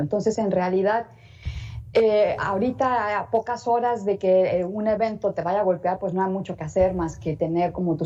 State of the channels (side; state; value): both; identical; correlation 1.00